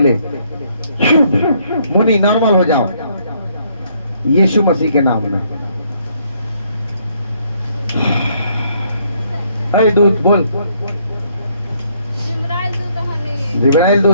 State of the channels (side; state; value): both; inverted; correlation -0.68